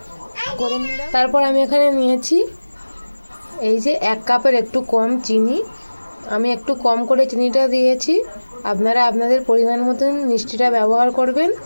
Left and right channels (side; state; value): both; inverted; correlation -1.00